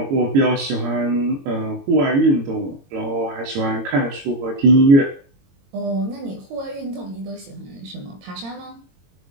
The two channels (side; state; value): left; late; 22 ms